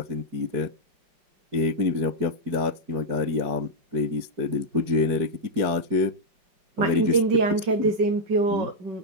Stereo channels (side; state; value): left; late; 4.7 ms